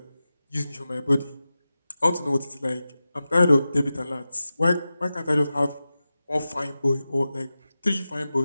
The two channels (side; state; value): both; inverted; correlation -0.94